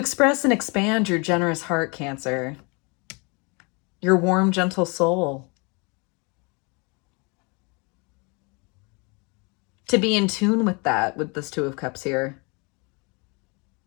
and expand your generous heart, Cancer, your warm, gentle soul. To be in tune with that, with this Two of Cups here.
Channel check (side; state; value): right; quieter; 30.7 dB